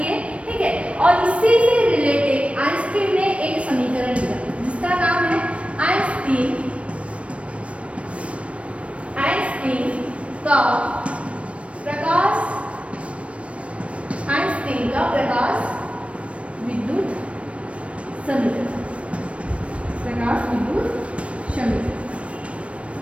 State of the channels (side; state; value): left; late; 0.062 ms